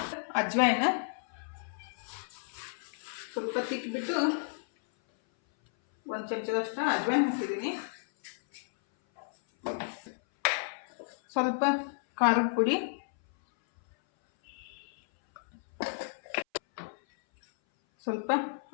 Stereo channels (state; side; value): silent; right; 56 dB below the other